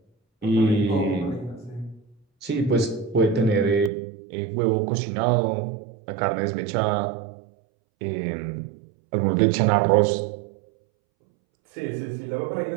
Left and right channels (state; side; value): drops out; left; at 3.9 s